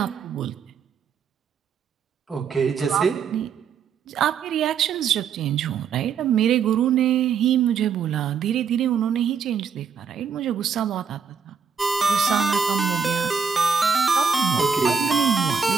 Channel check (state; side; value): quieter; left; 6.4 dB